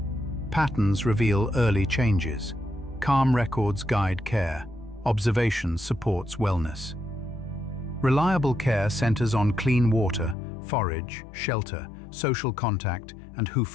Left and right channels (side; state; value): right; drops out; at 10.4 s